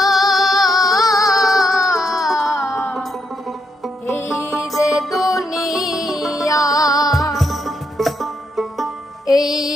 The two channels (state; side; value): normal; both; correlation 0.78